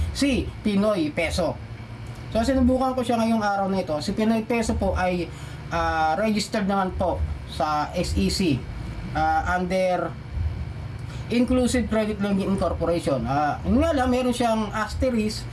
si Pinoy Peso. So sinubukan ko siya ngayong araw na ito. Si Pinoy Peso po ay registered naman po sa SEC under Inclusive Credit Lending Incorporation. Yun nga lang, meron siyang asterisk.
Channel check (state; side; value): identical; both; correlation 1.00